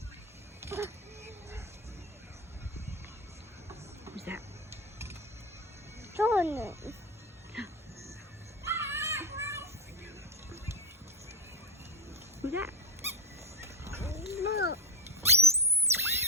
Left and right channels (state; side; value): normal; both; correlation 0.13